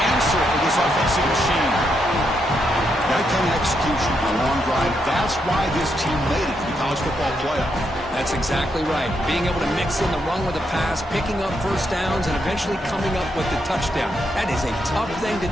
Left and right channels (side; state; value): both; normal; correlation 0.80